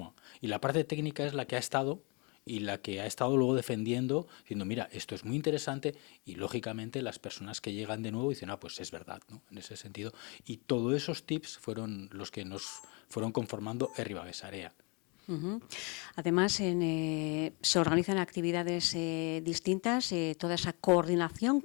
Y la parte técnica es la que ha estado y la que ha estado luego defendiendo, diciendo, mira, esto es muy interesante, y lógicamente las personas que llegan de nuevo dicen, pues es verdad, ¿no? En ese sentido. Y todos esos tips fueron los que nos fueron conformando Ribadesarea. Además, se organizan actividades distintas, toda esa coordinación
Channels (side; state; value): right; quieter; 31.3 dB